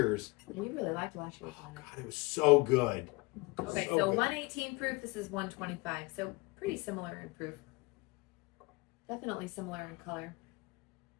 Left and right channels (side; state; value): right; quieter; 25.0 dB